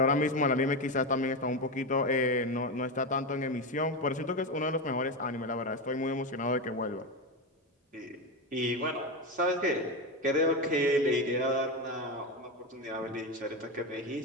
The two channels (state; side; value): normal; both; correlation 0.15